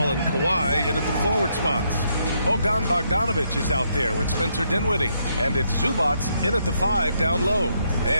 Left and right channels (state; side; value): inverted; both; correlation -0.76